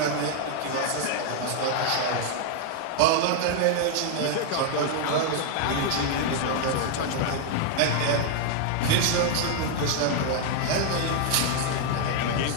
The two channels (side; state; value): both; different; correlation 0.00